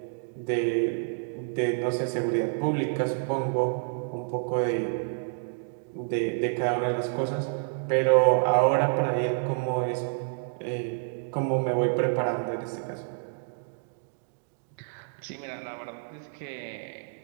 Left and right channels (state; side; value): silent; left; digital silence